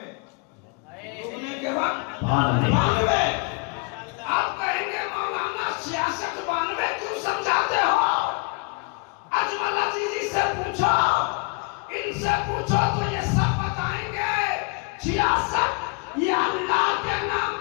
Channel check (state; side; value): quieter; right; 31.6 dB